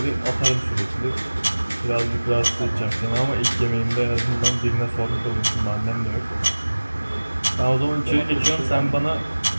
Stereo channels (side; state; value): both; inverted; correlation -1.00